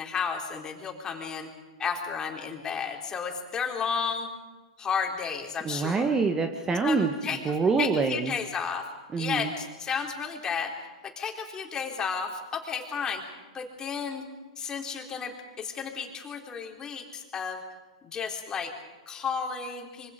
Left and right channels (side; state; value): both; normal; correlation 0.53